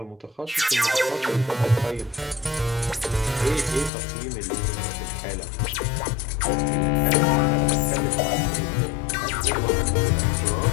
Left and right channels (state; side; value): drops out; right; at 3.9 s